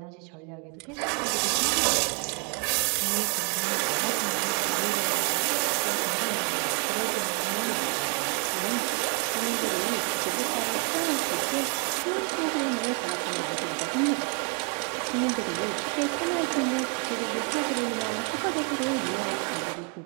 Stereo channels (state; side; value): quieter; left; 37.9 dB